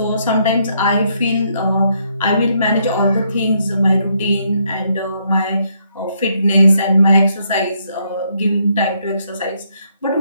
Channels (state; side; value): inverted; both; correlation -0.73